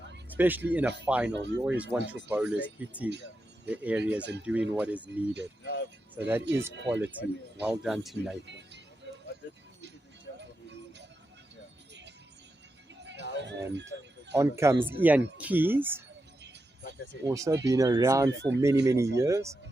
Especially in a final, you always want your bowlers hitting the areas and doing what is needed. So that is quality. Well done to Nathan. And on comes Ian Keys. Also been around for many, many years.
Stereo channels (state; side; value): normal; both; correlation 0.88